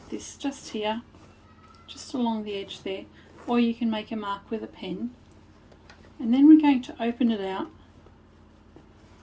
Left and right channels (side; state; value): both; identical; correlation 1.00